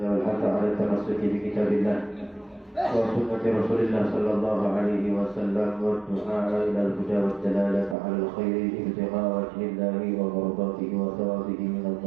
wal hatha 'ala tamassuki bi kitabillah wa sunnati Rasulillah sallallahu alaihi wasallam wa du'a ila al-huda wa dalalata 'ala al-khairi ibtigha'a wajhillahi wa mardatihi wa thawabihi min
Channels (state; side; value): drops out; left; at 8.0 s